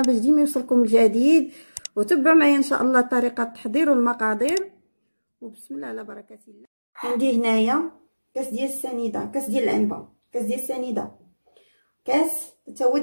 باش ديما يوصلكم الجديد، وتبعوا معايا ان شاء الله طريقه التحضير والمقادير. وبسم الله على بركه الله. عندي هنايا كاس ديال السنيده، كاس ديال العنبه، كاس ديال السنيده، كاس حتى هو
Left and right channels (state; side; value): inverted; both; correlation -1.00